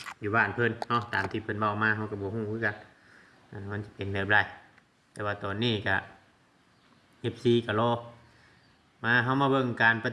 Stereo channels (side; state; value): both; identical; correlation 1.00